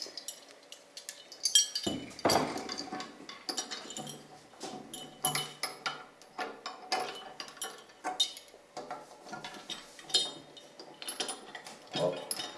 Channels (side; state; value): both; identical; correlation 1.00